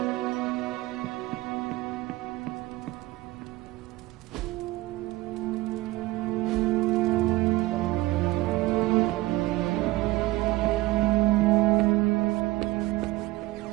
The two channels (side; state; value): left; quieter; 19.2 dB